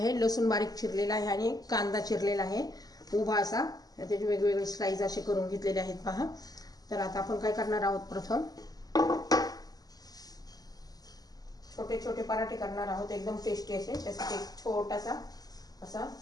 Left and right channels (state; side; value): late; right; 0.18 ms